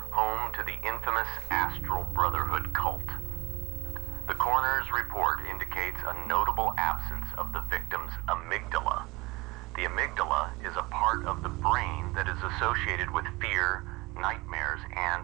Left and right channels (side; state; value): left; quieter; 22.5 dB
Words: home to the infamous Astral Brotherhood cult. The coroner's report indicates a notable absence of the victim's amygdala. The amygdala is a part of the brain that is associated with fear, nightmares, and